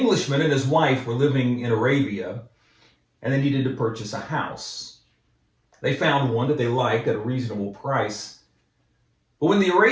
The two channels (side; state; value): both; identical; correlation 1.00